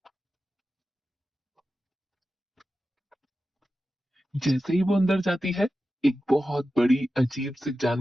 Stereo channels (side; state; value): both; normal; correlation 0.93